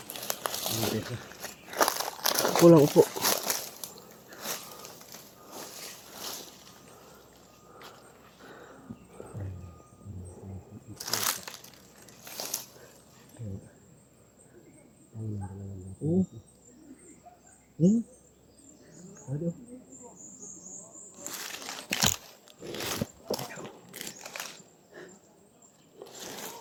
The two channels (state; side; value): identical; both; correlation 1.00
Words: Upo lang, upo. Aduh.